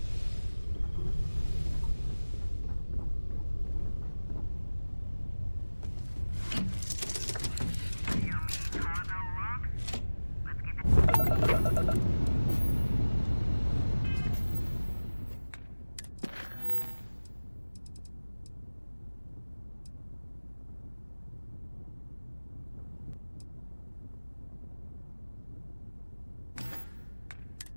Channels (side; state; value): both; inverted; correlation -1.00